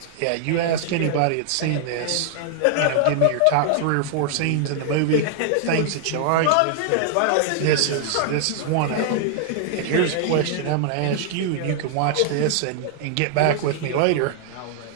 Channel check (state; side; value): different; both; correlation 0.00